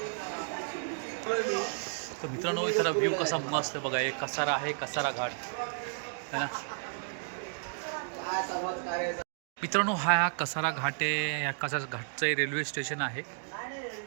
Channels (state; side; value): silent; left; digital silence